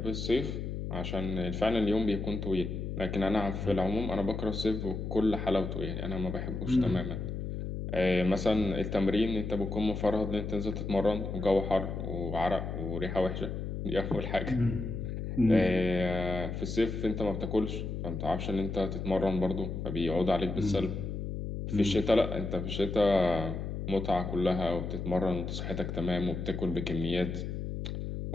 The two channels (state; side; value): noise; left; hum, 4 dB below the sound